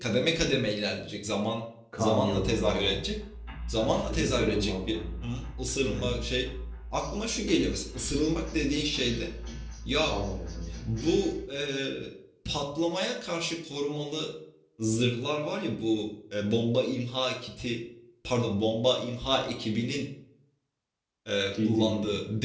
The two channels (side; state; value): both; identical; correlation 1.00